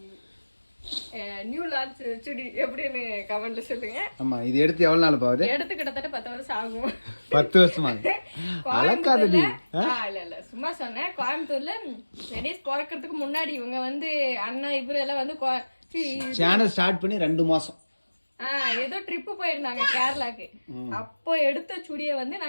நியூ லான்ச் சுடி எப்படின்னு கமெண்ட்ல சொல்லுங்க. ஆமா, இது எடுத்து எவ்வளவு நாள் பாவுது? எடுத்து கிட்டத்தட்ட 10 வருஷம் ஆகும். 10 வருஷமா? அலக்காதடி. இல்ல சும்மா சொன்னேன். கோயம்புத்தூர்ல வெனிஸ் பிறக்கிறதுக்கு முன்னாடி இவங்க வந்து அண்ணா இவரு எல்லாம் வந்து சேனல் ஸ்டார்ட் பண்ணி 2 மாசம் ஏதோ ட்ரிப்பு போயிருந்தாங்க கேரளாக்கு. அப்போ எடுத்த சுடியை வந்து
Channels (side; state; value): both; inverted; correlation -1.00